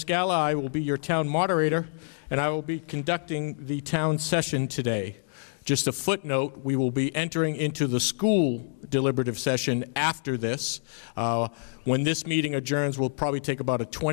I will be your town moderator, and I will be conducting the town session today. Just a footnote, we will be entering into the school deliberative session after this. When this meeting adjourns, we'll probably take about a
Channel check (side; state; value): right; silent; digital silence